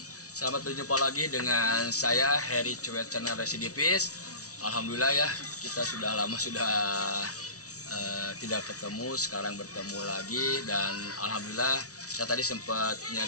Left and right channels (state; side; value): late; right; 0.66 ms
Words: Selamat berjumpa lagi dengan saya Heritage Sweat Channel Residivis. Alhamdulillah ya, kita sudah lama tidak ketemu, sekarang bertemu lagi dan alhamdulillah saya tadi sempat